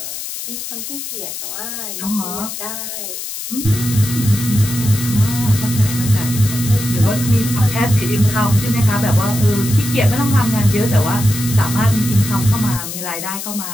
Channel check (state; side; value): noise; left; hiss, 7 dB below the sound